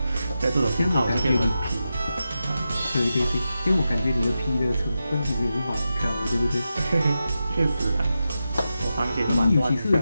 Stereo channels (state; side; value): inverted; both; correlation -0.90